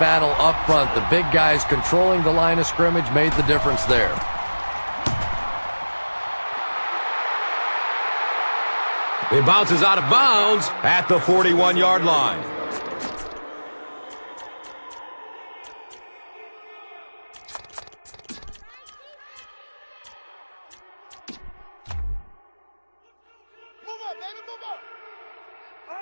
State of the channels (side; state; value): both; inverted; correlation -1.00